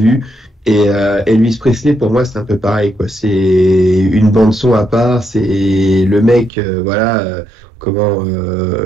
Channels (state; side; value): drops out; left; at 6.5 s